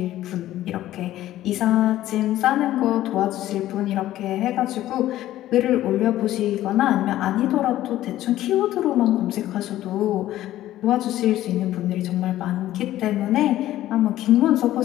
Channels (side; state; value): right; quieter; 14.0 dB